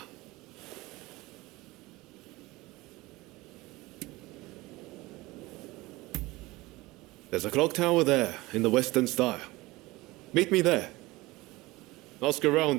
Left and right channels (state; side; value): quieter; left; 20.6 dB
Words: There's a clock tower there, in the Western style. Meet me there. Ask